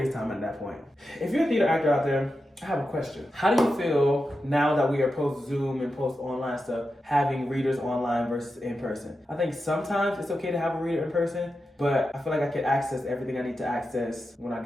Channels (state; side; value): normal; both; correlation 0.90